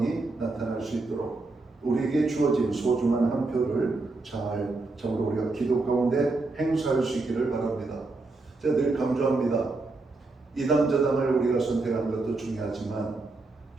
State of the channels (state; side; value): quieter; left; 3.4 dB